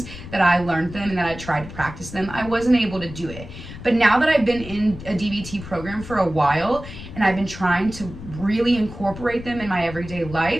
that I learned them and that I tried to practice them. I wasn't able to do it. But now that I've been in a DBT program for a while and I've been trying to really incorporate them in my everyday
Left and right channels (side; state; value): left; noise; rumble, 13 dB below the sound